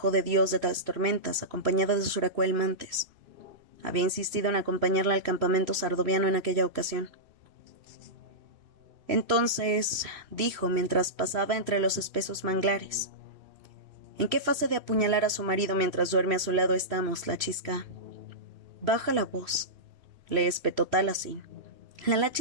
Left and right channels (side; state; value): left; late; 3.0 ms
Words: de Dios de las Tormentas, acompañada de Suracuel Mantes. Había insistido en acompañarla al campamento sardoviano en aquella ocasión. Entonces, dijo mientras pasaba entre los espesos manglares, ¿en qué fase de apuñalar a su marido mientras duerme a su lado estamos, la chisca? Baja la voz, le espetó Taliesin. La